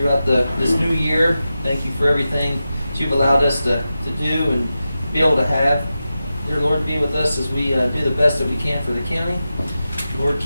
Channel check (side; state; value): both; inverted; correlation -0.92